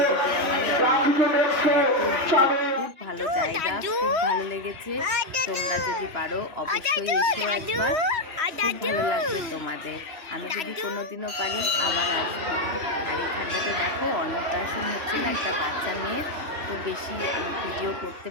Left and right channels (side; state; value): left; late; 3.0 ms